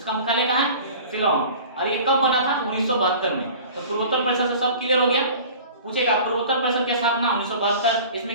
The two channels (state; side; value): inverted; both; correlation -0.42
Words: मुख्यालय कहाँ है, शिलोंग। और ये कब बना था, 1972 में। तो पूर्वोत्तर परिषद से सब क्लियर हो गया। पूछेगा पूर्वोत्तर परिषद की स्थापना 1972,